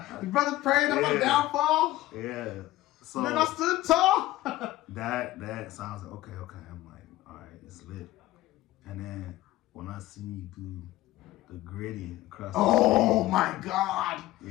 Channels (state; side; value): quieter; right; 16.1 dB